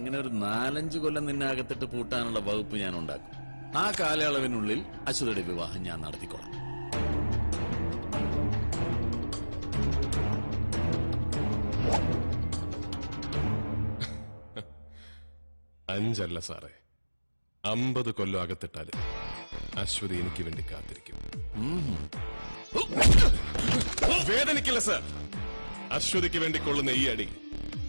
ഒരു 4-5 കൊല്ലം നിന്നെ അകത്തിട്ട് പൂട്ടാനുള്ള വകുപ്പ് ഞാൻ ഉണ്ടാക്കും. ആ കാലയളവിനുള്ളിൽ അശ്വതിയുടെ വിവാഹം ഞാൻ നടത്തിക്കോളാം. 5 അല്ല സാറേ, 50 കൊല്ലം അകത്തിട്ടാല് അശ്വതി എനിക്ക് വേണ്ടി കാത്തിരിക്കും. വേദനിക്കില്ല സാർ. അശ്വതിക്ക് വേണ്ടി കൊള്ളുന്ന ഈ അടി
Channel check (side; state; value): both; inverted; correlation -1.00